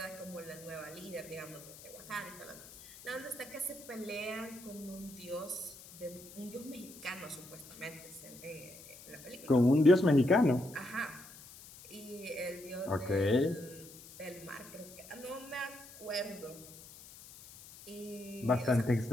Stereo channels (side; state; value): left; noise; hiss, 18 dB below the sound